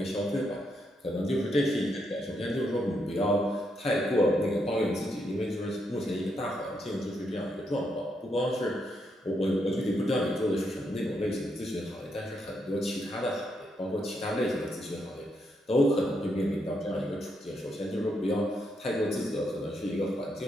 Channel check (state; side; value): normal; both; correlation 0.79